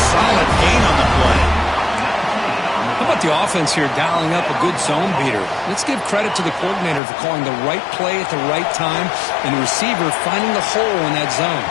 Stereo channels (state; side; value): drops out; right; at 7.0 s